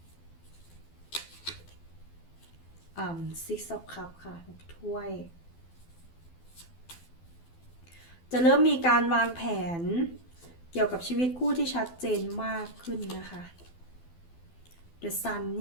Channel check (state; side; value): late; right; 12 ms